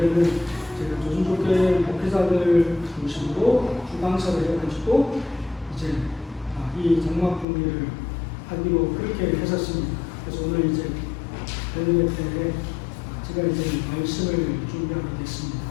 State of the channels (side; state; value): right; drops out; at 7.5 s